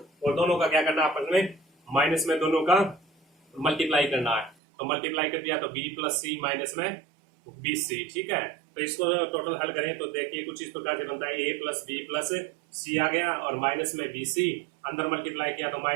और दोनों का क्या करना है आपस में, माइनस में दोनों का मल्टीप्लाई करना है। तो मल्टीप्लाई कर दिया तो बी प्लस सी माइनस में बी सी। ठीक है। तो इसको टोटल हल करें तो देखिए कुछ इस प्रकार से बनता है, ए प्लस बी प्लस सी आ गया और माइनस में बी सी, अंदर मल्टीप्लाई किया तो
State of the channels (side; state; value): left; drops out; at 4.5 s